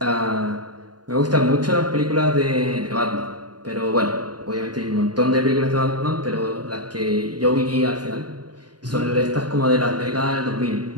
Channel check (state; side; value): late; left; 0.70 ms